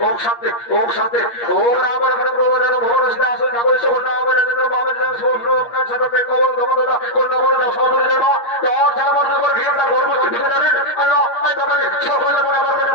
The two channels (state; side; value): late; right; 8.5 ms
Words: ওম শান্তি, ওম শান্তি, ওম রাম রাম ভগবান ভগবান সে আসো নগর সে নাম রাম বাবা রাম সোম কান সবে কবল দমদা কোন নগর না সদর জন্য তার যারা মনে করে ঘিরটা গর্ব ঠিক জানেন। আল্লাহ আই বাবা সকলে মনে আমার